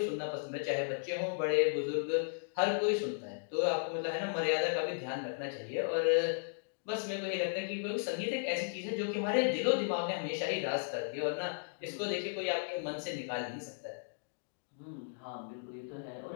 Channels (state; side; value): silent; right; digital silence